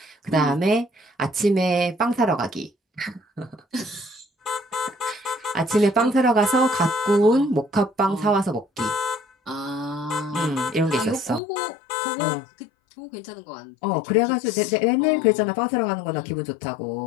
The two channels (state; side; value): drops out; right; at 11.4 s